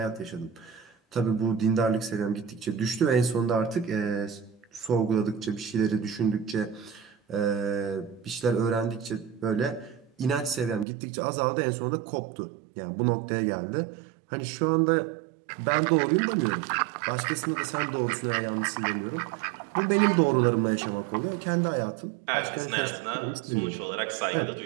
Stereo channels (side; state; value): left; drops out; at 10.9 s